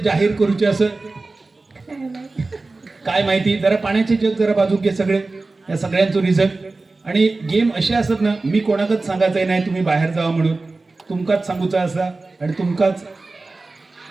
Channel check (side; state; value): left; quieter; 3.4 dB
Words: करूचे असं काय माहिती. जरा पाण्याचे जग जरा बाजूक घे सगळे, या सगळ्यांचं रिझल्ट. आणि गेम असे असत ना, मी कोणाकच सांगायचंय नाही तुम्ही बाहेर जावा म्हणून. तुमकाच सांगूचा असा आणि तुमकाच